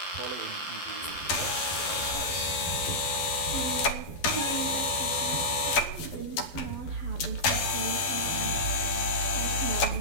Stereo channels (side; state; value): right; late; 11 ms